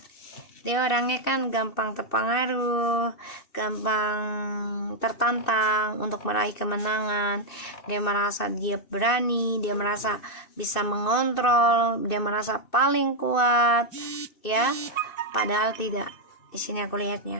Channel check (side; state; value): right; late; 2.6 ms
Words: Dia orangnya kan gampang terpengaruh, gampang tertantang untuk meraih kemenangan. Dia merasa dia berani, dia merasa bisa mengontrol, dia merasa paling kuat, ya. Padahal tidak. Di sini aku